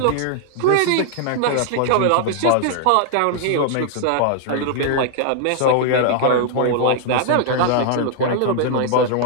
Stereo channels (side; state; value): both; different; correlation 0.00